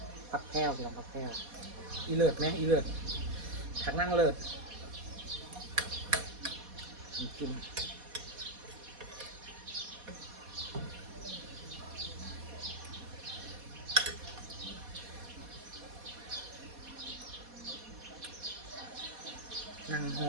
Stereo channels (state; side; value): late; left; 4.2 ms